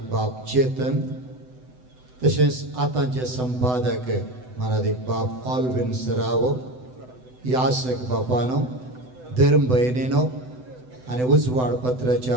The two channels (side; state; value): left; late; 7.9 ms